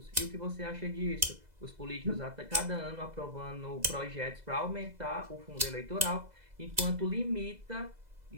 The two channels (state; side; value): late; left; 2.0 ms